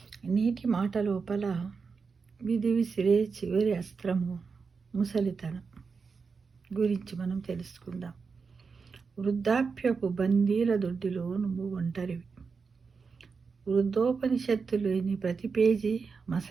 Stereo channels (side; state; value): left; quieter; 5.1 dB